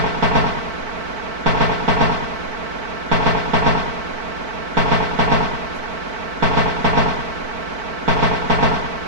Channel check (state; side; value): late; left; 4.5 ms